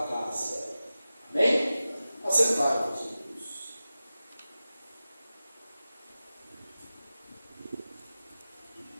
casa. Amém? Assentai-vos, irmãos.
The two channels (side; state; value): both; inverted; correlation -0.94